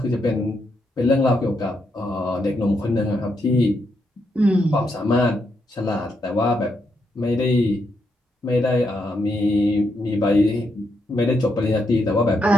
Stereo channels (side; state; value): both; normal; correlation 0.80